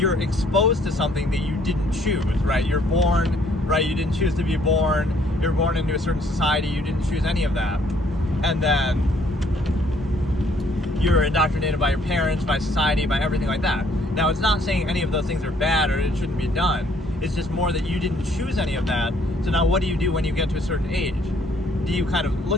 exposed to something that you didn't choose, right? You're born, right? You didn't choose to be born. You're born into a certain society. You didn't choose any of that. And then you're indoctrinated by your parents, by society, by everything like that. Now, it's not saying any of those things are bad or it shouldn't be done. It's just more that you didn't choose any of that. So now what do you do when you get to a certain age? Do you kind of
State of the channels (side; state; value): both; normal; correlation 0.64